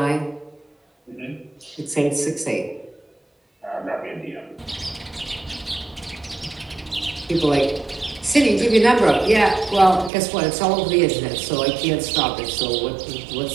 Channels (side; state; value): left; drops out; at 10.1 s